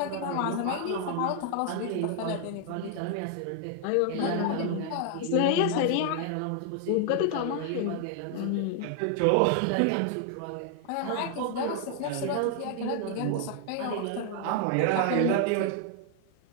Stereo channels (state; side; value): different; both; correlation 0.00